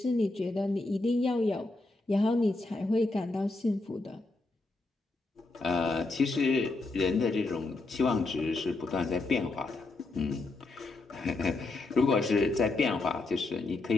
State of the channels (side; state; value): right; quieter; 3.2 dB